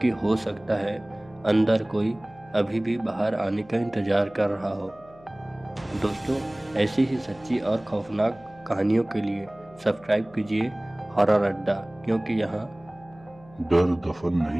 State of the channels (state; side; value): noise; left; hum, 24 dB below the sound